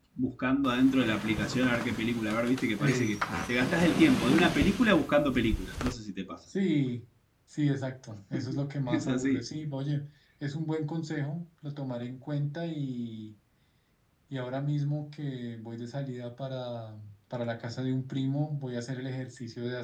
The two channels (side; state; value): both; identical; correlation 1.00